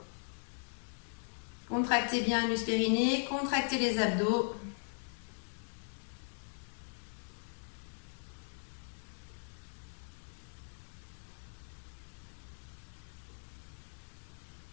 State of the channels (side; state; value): right; silent; 52 dB below the other